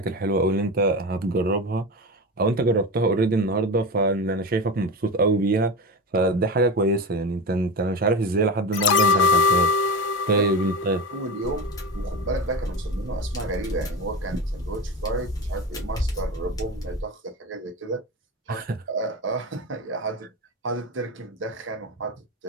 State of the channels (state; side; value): normal; both; correlation 0.24